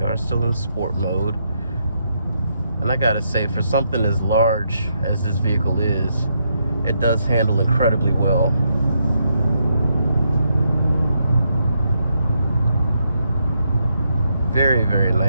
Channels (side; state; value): both; inverted; correlation -0.79